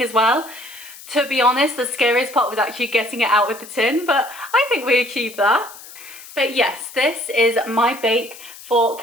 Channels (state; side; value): noise; left; hiss, 17 dB below the sound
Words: as well. To be honest, the scariest part was actually getting it out of the tin, but I think we achieved that. But yes, this is my bake for